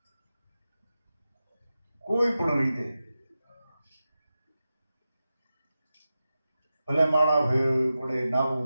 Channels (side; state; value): both; inverted; correlation -0.93